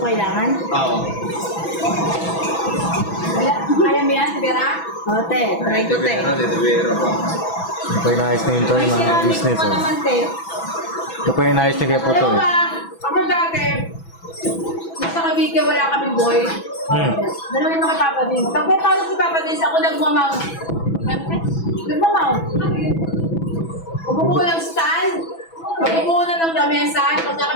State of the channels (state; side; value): late; right; 6.0 ms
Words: kailangan. Oo. Kaya mo yan, Vera? Ote, try ko te. Dedivero. Ito pa yung naayos na yun to yung mga business oh. naman te. Ito pa yung naayos na kaya po to Alam eh. ba, ako dati, sa Cavite wala kami boy. Dalawa yung mga Papa Dins. Tapos paano si Papa Dins, ako nagmamount. Nagmamount. Magbubuo ng stand. Magbubuo na ng lamesa.